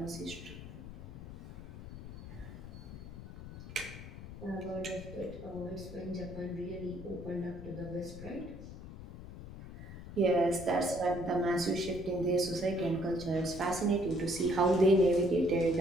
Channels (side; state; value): left; noise; rumble, 12 dB below the sound